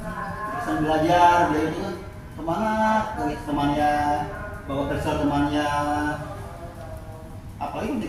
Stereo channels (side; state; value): both; identical; correlation 1.00